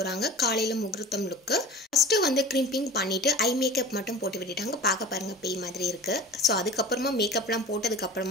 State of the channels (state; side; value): normal; both; correlation 0.38